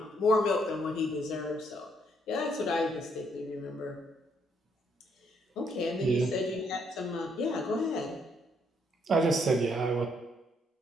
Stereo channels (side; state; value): both; normal; correlation 0.72